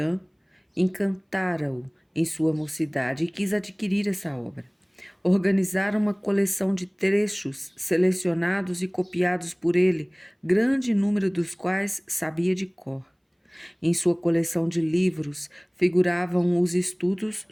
encantara-o em sua mocidade e quis adquirir essa obra. Organizaram uma coleção de trechos selecionados e copiados por ele, grande número dos quais sabia de cor. Em sua coleção de livros figuravam os estudos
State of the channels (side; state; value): both; identical; correlation 1.00